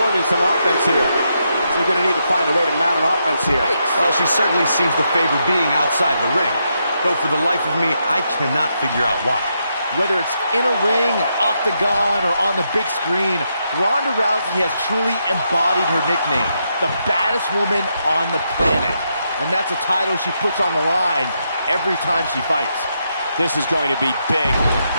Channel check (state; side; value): inverted; both; correlation -0.81